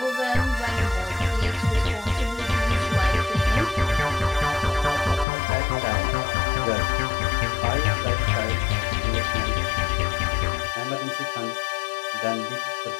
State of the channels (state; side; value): drops out; right; at 5.2 s